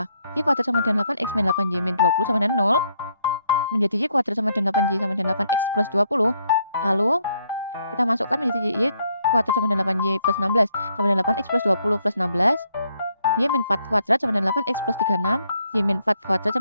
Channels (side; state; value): both; inverted; correlation -0.72